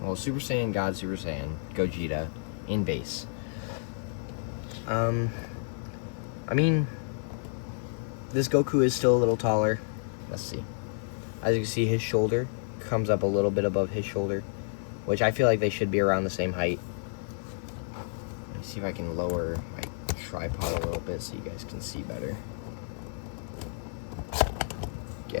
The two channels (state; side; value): silent; right; digital silence